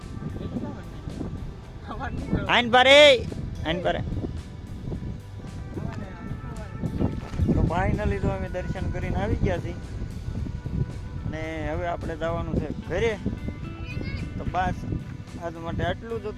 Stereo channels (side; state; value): both; identical; correlation 1.00